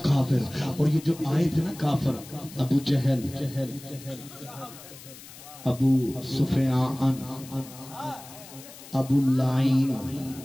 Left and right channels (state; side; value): noise; left; hiss, 17 dB below the sound